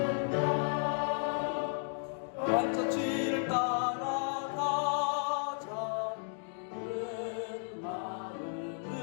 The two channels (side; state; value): right; silent; 55 dB below the other